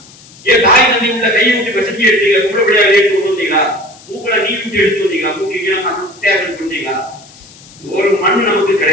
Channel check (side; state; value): left; noise; hiss, 23 dB below the sound